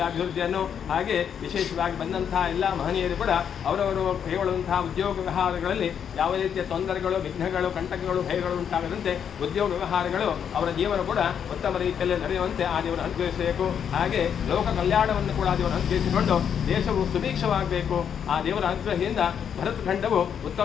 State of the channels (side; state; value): right; quieter; 8.1 dB